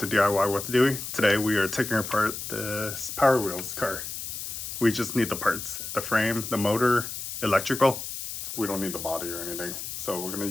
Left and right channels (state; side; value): noise; left; hiss, 7 dB below the sound